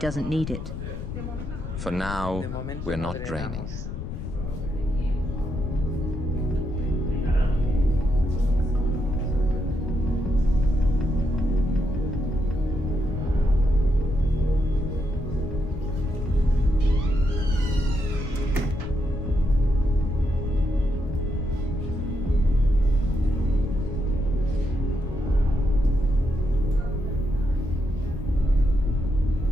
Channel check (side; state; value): left; noise; rumble, 7 dB below the sound